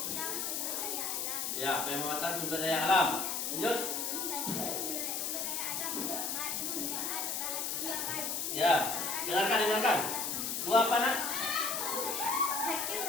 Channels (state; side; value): noise; left; hiss, 1 dB below the sound